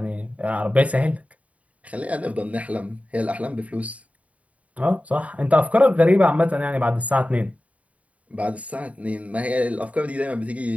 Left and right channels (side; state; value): left; late; 0.068 ms